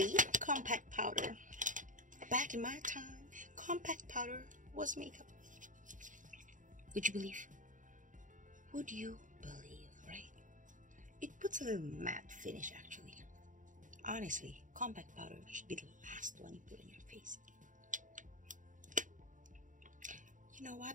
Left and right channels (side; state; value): left; late; 0.37 ms